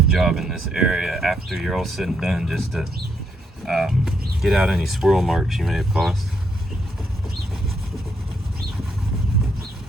job in this area after you're all said and done, just to get out any swirl marks you may have caused.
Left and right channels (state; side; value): normal; both; correlation 0.76